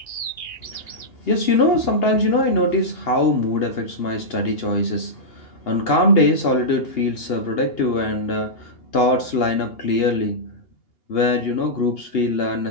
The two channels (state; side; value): late; right; 2.8 ms